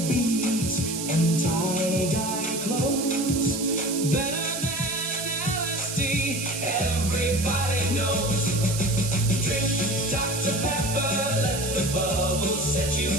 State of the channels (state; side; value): noise; right; hiss, 5 dB below the sound